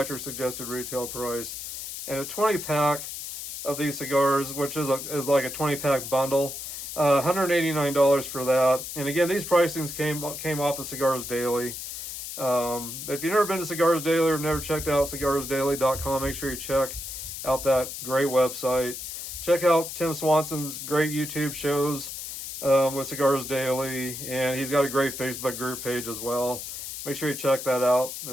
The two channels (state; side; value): noise; left; hiss, 8 dB below the sound